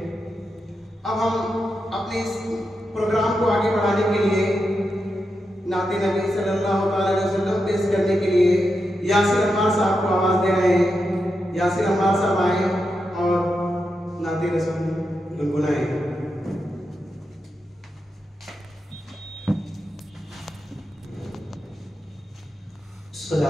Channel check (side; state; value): both; normal; correlation 0.87